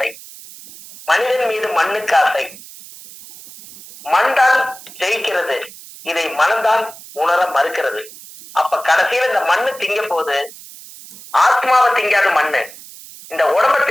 மனிதன் மீது மண்ணுக்கு ஆசை, மண் தான் ஜெயிக்கிறது, இதை மனம்தான் உணர மறுக்கிறது. அப்ப கடைசியில இந்த மண்ணு திங்க போது ஆத்மாவை திங்காத மண்ணு இந்த உடம்ப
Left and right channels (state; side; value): noise; right; hiss, 18 dB below the sound